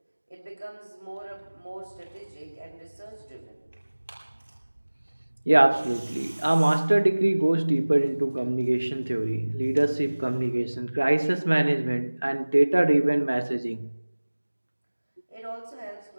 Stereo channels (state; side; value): inverted; both; correlation -1.00